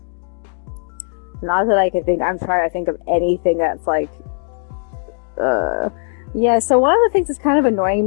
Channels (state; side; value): silent; right; digital silence